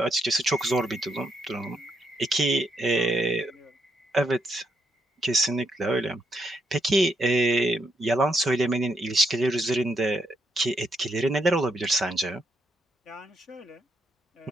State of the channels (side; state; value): both; normal; correlation 0.78